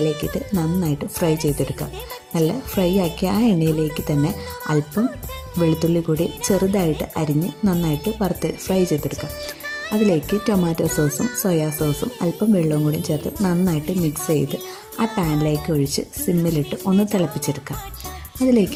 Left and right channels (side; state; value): both; identical; correlation 1.00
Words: നന്നായിട്ട് ഫ്രൈ ചെയ്തെടുക്കാം. നല്ല ഫ്രൈ ആക്കിയ ആ എണ്ണയിലേക്ക് തന്നെ അല്പം വെളുത്തുള്ളി കൂടി ചെറുതായിട്ട് അരിഞ്ഞ് നന്നായിട്ട് വറുത്ത് ഫ്രൈ ചെയ്തെടുക്കാം. അതിലേക്ക് ടൊമാറ്റോ സോസും സോയാ സോസും അല്പം വെള്ളവും കൂടി ചേർത്ത് നന്നായിട്ട് മിക്സ് ചെയ്ത് ആ പാനിലേക്ക് ഒഴിച്ച് സിമ്മിലിട്ട് ഒന്ന് തിളപ്പിച്ചെടുക്കാം.